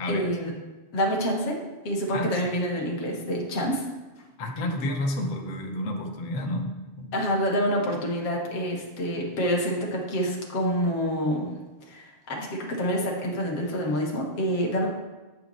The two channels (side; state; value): right; late; 7.4 ms